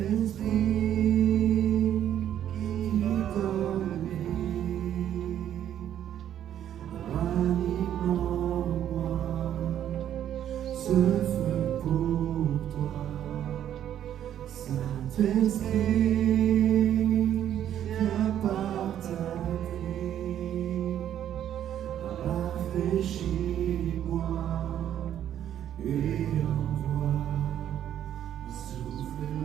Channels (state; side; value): quieter; left; 10.6 dB